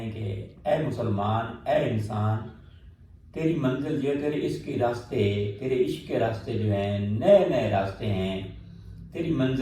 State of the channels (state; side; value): identical; both; correlation 1.00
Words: کہ اے مسلمان، اے انسان، تیری منزل جو ہے، تیرے عشق کے راستے، تیرے عشق کے راستے جو ہیں نئے نئے راستے ہیں، تیری